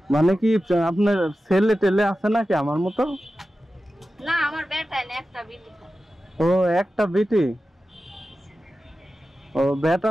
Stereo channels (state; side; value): normal; both; correlation 0.93